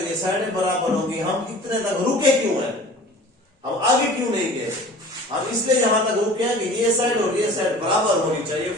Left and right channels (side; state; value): both; normal; correlation 0.44